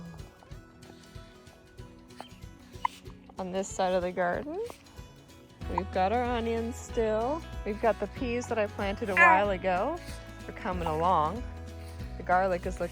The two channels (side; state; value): both; identical; correlation 1.00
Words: On this side of the garden, we've got our onions still. We've got the peas that I planted a while ago. They're coming along. The garlic is